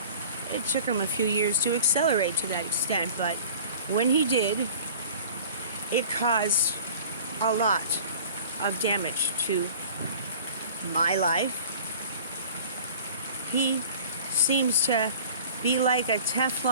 It took him a few years to accelerate to that extent, but when he did, it caused a lot of damage to my life. He seems to be like a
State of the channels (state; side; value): inverted; both; correlation -0.44